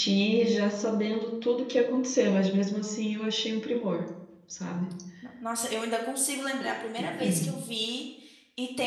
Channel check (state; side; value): identical; both; correlation 1.00